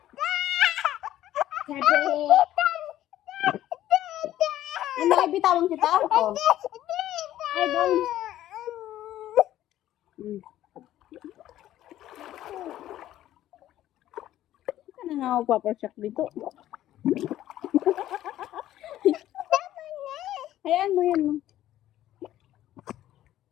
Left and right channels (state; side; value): quieter; right; 13.2 dB